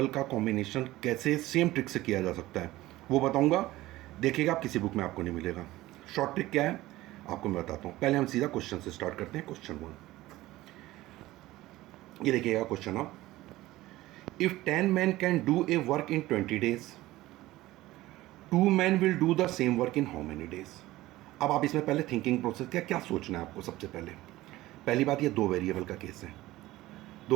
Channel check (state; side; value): quieter; left; 17.2 dB